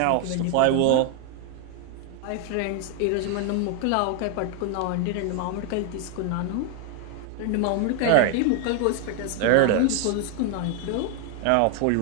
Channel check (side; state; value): both; different; correlation 0.01